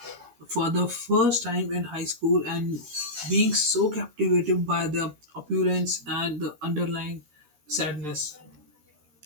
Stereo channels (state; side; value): late; left; 13 ms